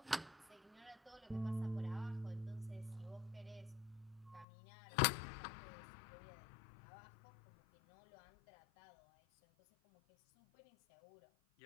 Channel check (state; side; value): drops out; right; at 4.5 s